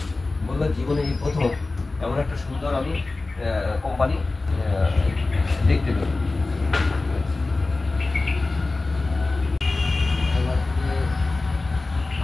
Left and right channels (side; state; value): right; quieter; 3.4 dB